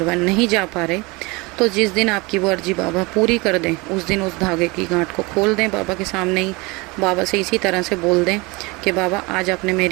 नहीं जा पा रहे तो जिस दिन आपकी वो अर्जी बाबा पूरी कर दें उस दिन उस धागे की गांठ को खोल दें बाबा के सामने ही। बाबा से इसी तरह से बोल दें कि बाबा आज आपने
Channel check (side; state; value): left; quieter; 25.4 dB